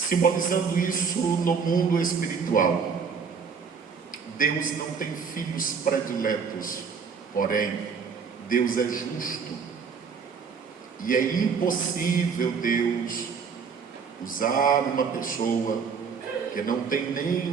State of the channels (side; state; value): left; quieter; 5.9 dB